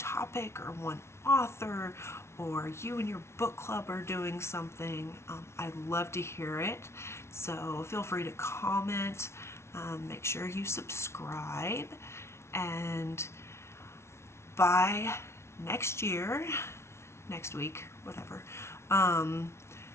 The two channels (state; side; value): late; right; 0.13 ms